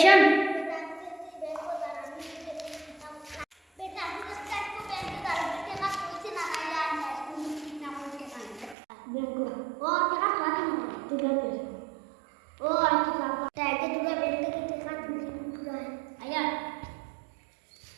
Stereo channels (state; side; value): drops out; left; at 8.8 s